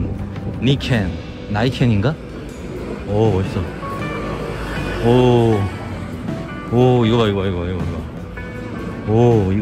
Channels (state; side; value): identical; both; correlation 1.00